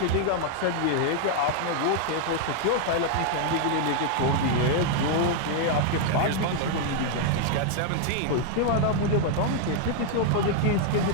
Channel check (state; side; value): different; both; correlation 0.00